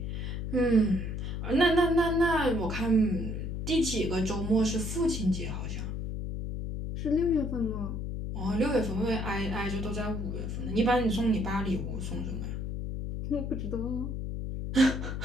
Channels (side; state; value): left; noise; hum, 4 dB below the sound